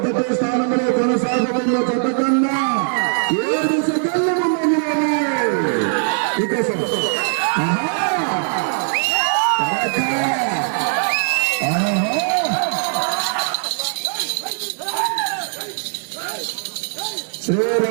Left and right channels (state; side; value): silent; left; 66 dB below the other